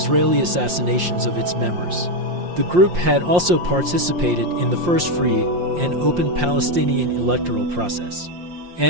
assassinations of its members. The group had also participated in the first free and open Palestinian electoral process,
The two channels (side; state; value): left; late; 5.7 ms